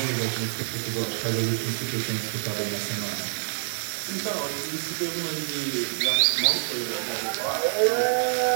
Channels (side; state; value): left; silent; digital silence